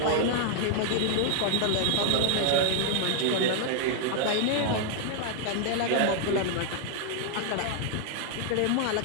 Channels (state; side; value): different; both; correlation 0.00